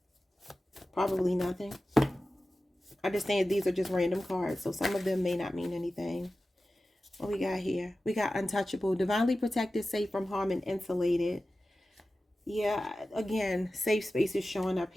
Probably nothing. I understand these are just random cards, so some of them may not mean anything. What we got here? We got untouchable, divinely protected, safe from harm, and insulated. Yeah, again, safe space is showing up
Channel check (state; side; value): normal; both; correlation 0.94